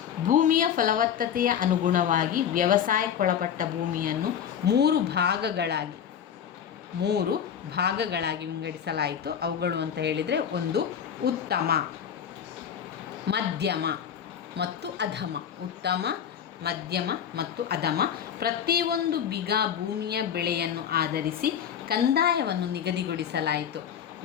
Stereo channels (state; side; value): quieter; right; 8.6 dB